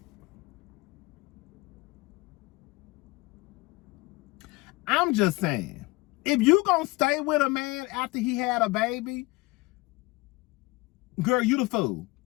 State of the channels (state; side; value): quieter; right; 23.1 dB